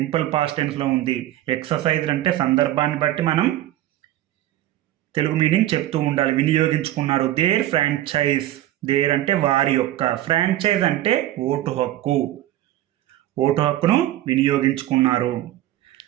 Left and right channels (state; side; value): quieter; left; 14.1 dB